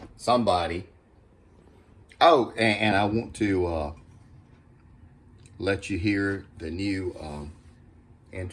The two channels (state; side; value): identical; both; correlation 1.00